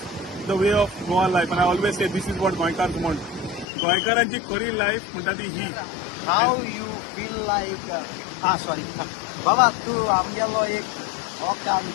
the way of Goa life and I always say this is what गोंयकार म्हण गोंयकारांची खरी लायफ म्हणटा ती ही हाव यू फील लाईक सॉरी बाबा तू आमगेलो एक काम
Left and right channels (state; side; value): drops out; right; at 3.7 s